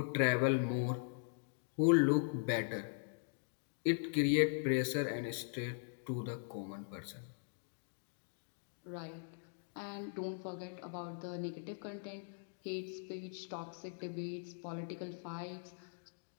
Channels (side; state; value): right; silent; digital silence